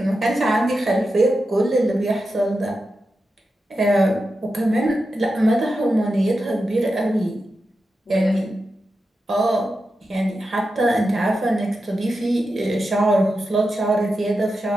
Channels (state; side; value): normal; both; correlation 0.90